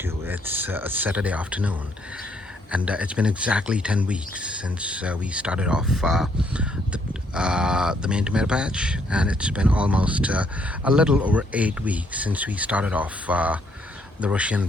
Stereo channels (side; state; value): both; normal; correlation 0.70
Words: It's a Saturday afternoon, and it's been exactly 10 weeks since we started off the main tomato patch, and it's been almost a little over 8 weeks since we started off the Russian